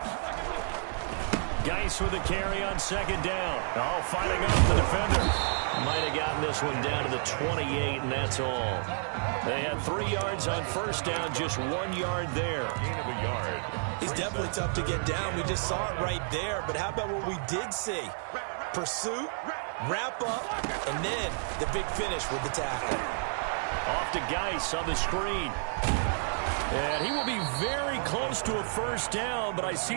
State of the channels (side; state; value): left; silent; 58 dB below the other